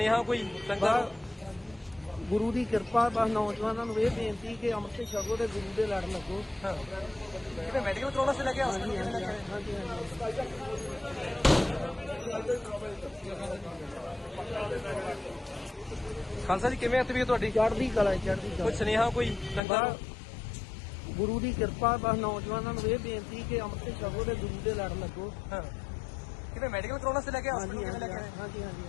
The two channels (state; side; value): drops out; right; at 19.6 s